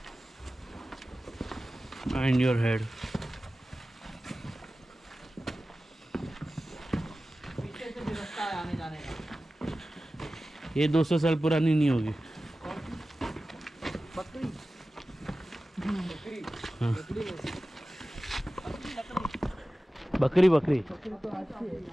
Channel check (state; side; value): normal; both; correlation 0.95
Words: Behind your head. पीछे से भी रास्ता है आने जाने का। ये 200 साल पुरानी नहीं होगी। बकरी हाँ। बकरी बकरी बकरी बकरी तो अच्छी है